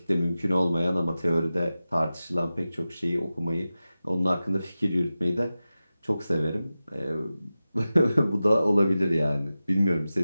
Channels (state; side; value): inverted; both; correlation -0.95